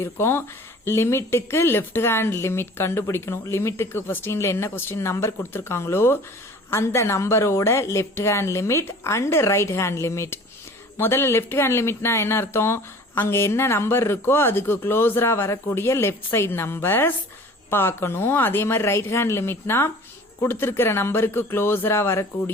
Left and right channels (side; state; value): both; normal; correlation 0.45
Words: லிமிட்டுக்கு லெஃப்ட் ஹேண்ட் லிமிட் கண்டுபிடிக்கணும். லிமிட்டுக்கு கொஸ்டின்ல என்ன கொஸ்டின் நம்பர் கொடுத்துருக்காங்களோ அந்த நம்பரோட left hand limit and right hand limit. முதல்ல லெஃப்ட் ஹேண்ட் லிமிட்னா என்ன அர்த்தம்? அங்க என்ன நம்பர் இருக்கோ அதுக்கு க்ளோஸரா வரக்கூடிய லெஃப்ட் சைடு நம்பர்ஸ் பார்க்கணும். அதே மாதிரி ரைட் ஹேண்ட் லிமிட்னா கொடுத்திருக்கிற நம்பருக்கு க்ளோஸரா